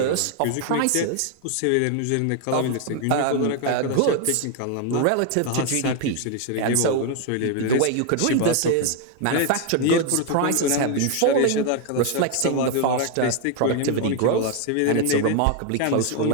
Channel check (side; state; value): both; different; correlation 0.01